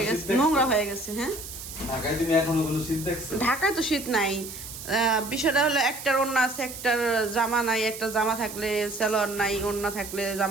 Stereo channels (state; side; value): noise; right; hiss, 11 dB below the sound